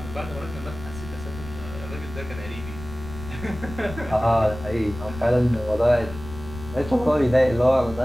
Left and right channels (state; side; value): noise; left; rumble, 12 dB below the sound